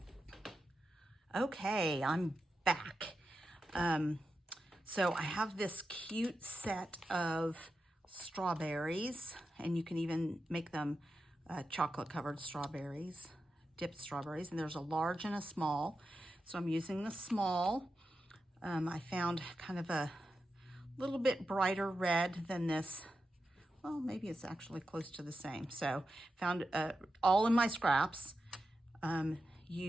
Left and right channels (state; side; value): normal; both; correlation 0.90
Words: on. Okay, I'm back. So I have this cute set of strawberries, and you can even make them chocolate covered strawberries, dipped strawberries, and there's a large and a small. So I'm using the small. I found kind of a little bit brighter red than this. Well, maybe it's actually close to the same. So found all in my scraps.